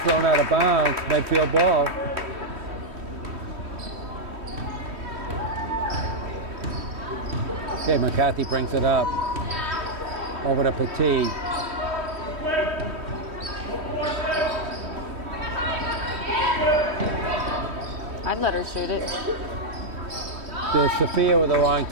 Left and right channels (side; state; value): left; late; 3.1 ms